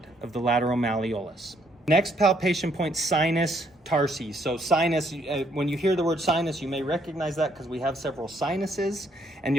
of the lateral malleolus. Next palpation point, sinus tarsi. So sinus, when you hear the word sinus, you may recognize that because we have several sinuses, and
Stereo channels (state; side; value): normal; both; correlation 0.69